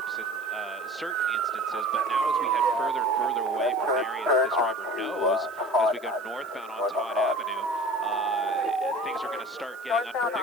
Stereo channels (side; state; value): right; noise; hiss, 26 dB below the sound